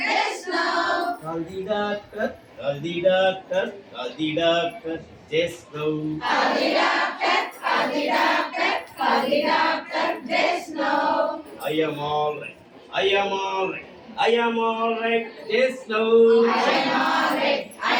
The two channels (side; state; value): both; identical; correlation 1.00